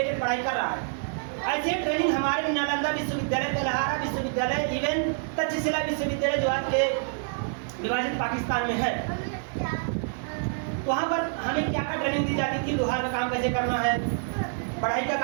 पढ़ाई कर रहा है। ऐसे ट्रेनिंग हमारे नालंदा विश्वविद्यालय, तेलहारा विश्वविद्यालय, इवन तक्षशिला विश्वविद्यालय जो आज के विभाजित पाकिस्तान में है, वहाँ पर हमें क्या क्या ट्रेनिंग दी जाती थी? लोहार का काम कैसे करना है, पढ़ाई का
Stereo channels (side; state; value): left; silent; 57 dB below the other